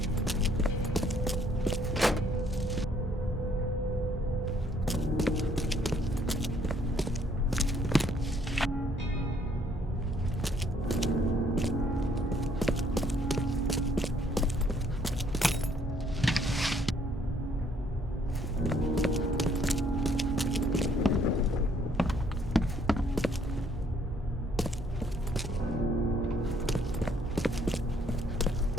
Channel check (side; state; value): both; normal; correlation 0.65